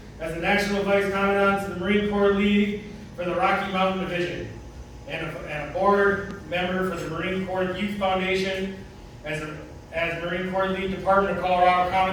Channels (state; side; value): identical; both; correlation 1.00